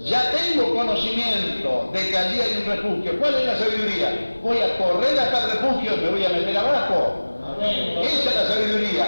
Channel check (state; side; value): inverted; both; correlation -1.00